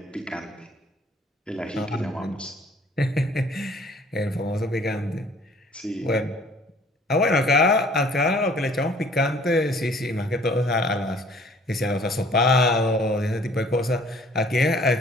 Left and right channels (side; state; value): both; normal; correlation 0.55